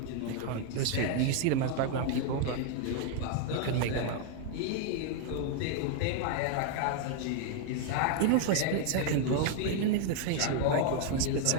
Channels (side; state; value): both; different; correlation 0.00